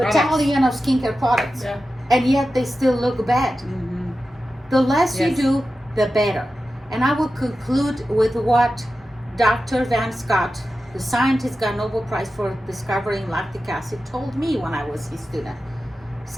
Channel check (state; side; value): normal; both; correlation 0.93